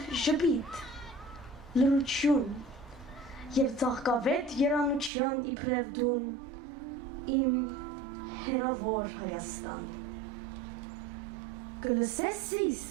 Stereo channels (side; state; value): left; drops out; at 5.1 s